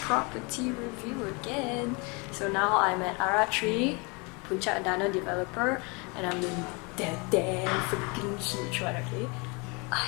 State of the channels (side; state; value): right; quieter; 30.0 dB